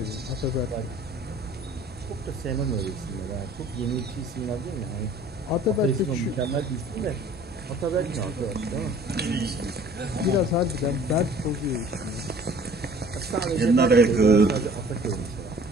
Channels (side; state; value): both; normal; correlation 0.51